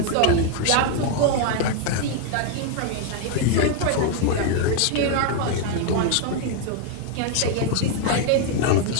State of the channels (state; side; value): different; both; correlation 0.01